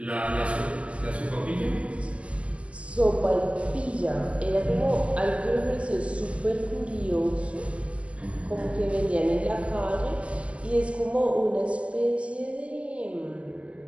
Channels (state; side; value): late; left; 0.061 ms